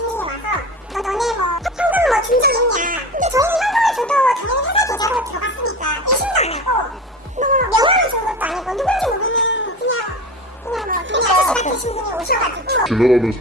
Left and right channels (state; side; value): normal; both; correlation 0.30